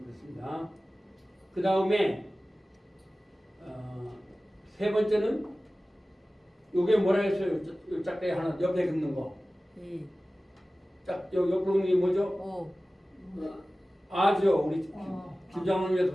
그 다음에 세 번째는 요게 뭐라 했어요? 요 짝대기 하나 옆에 긋는 거. 이, 옆으로 긋는 게 뭐죠? 오, 아죠. 우리 김장훈님께서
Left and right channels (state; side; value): normal; both; correlation 0.97